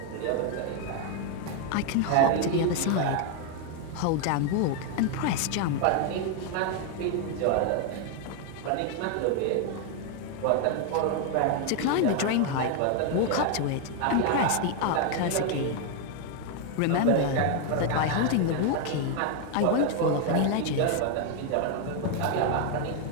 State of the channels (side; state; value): both; different; correlation 0.01